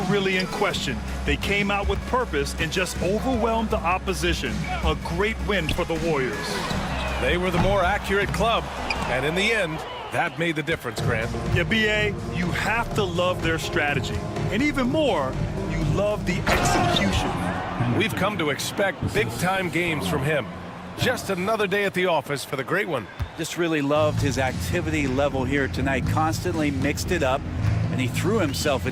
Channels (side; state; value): both; identical; correlation 1.00